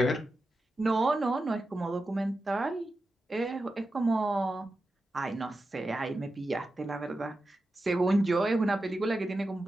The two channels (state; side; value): normal; both; correlation 0.91